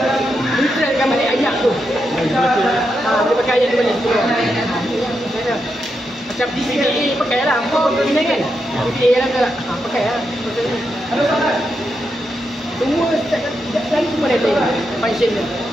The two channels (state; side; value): normal; both; correlation 0.84